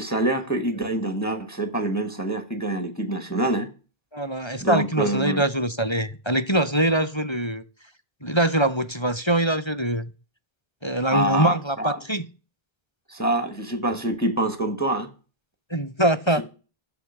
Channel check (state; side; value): late; right; 1.3 ms